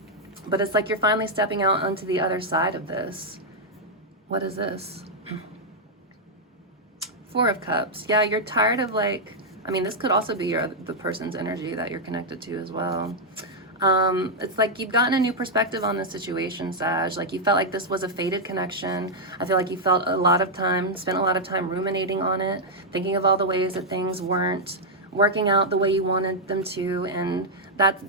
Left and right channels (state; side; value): normal; both; correlation -0.03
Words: But it's like you're finally stepping out onto the other side of this. What is this? Four of Cups. Yeah, you're tired of, like, I mean, this could also be the person's energy that you're connected to as well. It's like you've gotten a new perspective on the situation, Sag. Like, you felt like this was a fated connection. I feel like you spent a lot of time ruminating on it, thinking of all the ways that things weren't working out the way you wanted them to, and that